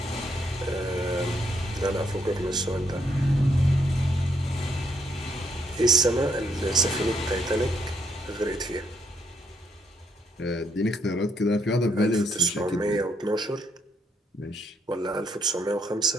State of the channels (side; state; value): both; normal; correlation 0.72